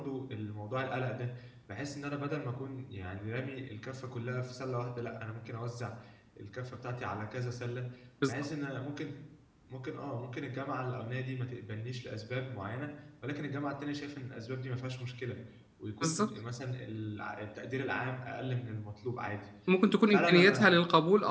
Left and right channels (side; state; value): both; identical; correlation 1.00